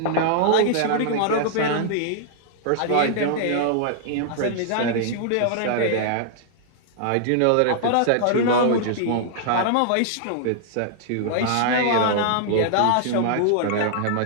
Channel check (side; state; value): both; different; correlation -0.01